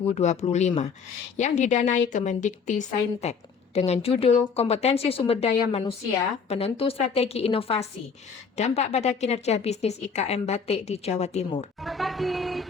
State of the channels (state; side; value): quieter; right; 5.8 dB